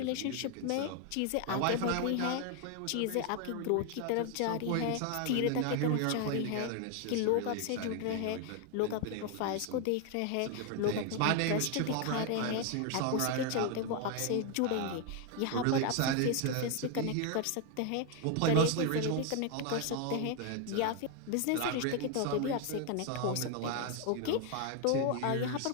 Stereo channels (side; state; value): both; different; correlation 0.01